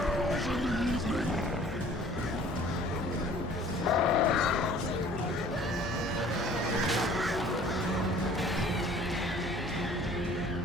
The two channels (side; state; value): both; normal; correlation 0.52